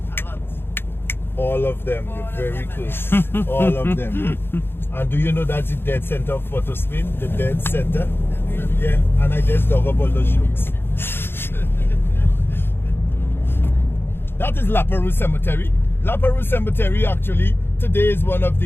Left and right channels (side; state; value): right; late; 0.11 ms